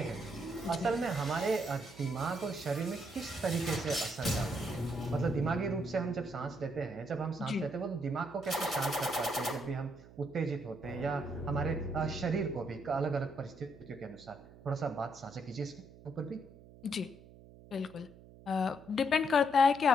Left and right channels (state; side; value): noise; right; hum, 20 dB below the sound